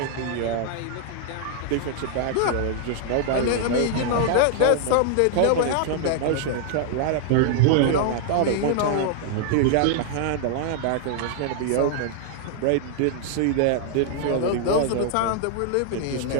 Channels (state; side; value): different; both; correlation -0.01